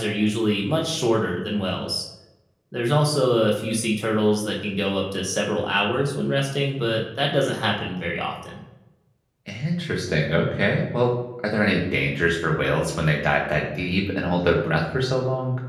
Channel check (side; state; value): both; identical; correlation 1.00